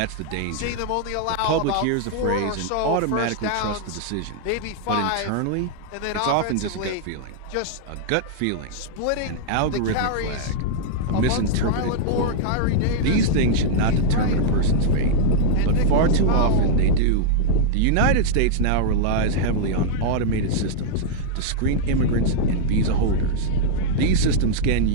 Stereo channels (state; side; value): different; both; correlation -0.01